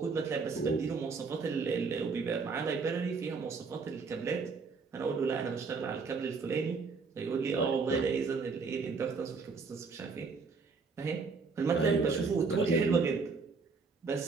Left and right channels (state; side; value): quieter; left; 4.7 dB